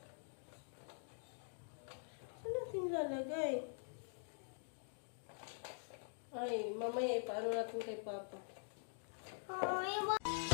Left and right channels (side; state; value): right; silent; digital silence